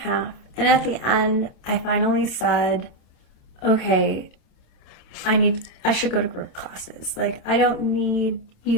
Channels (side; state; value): right; late; 27 ms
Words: And at the end, I finally said, okay, I should go to group classes. Like, I don't need